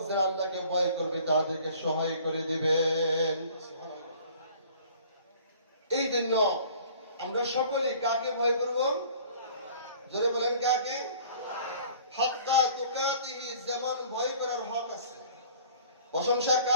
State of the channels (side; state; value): both; inverted; correlation -0.51